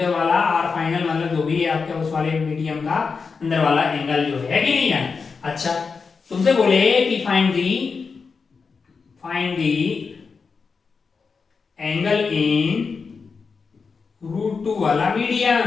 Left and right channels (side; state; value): right; quieter; 5.1 dB